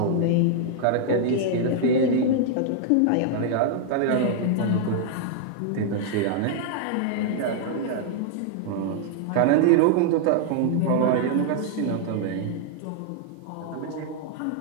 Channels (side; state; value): both; different; correlation -0.01